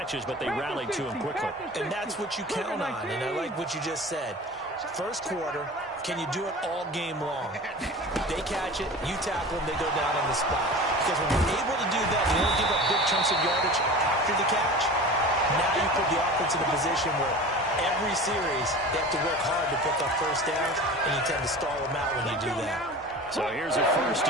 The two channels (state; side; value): normal; both; correlation 0.36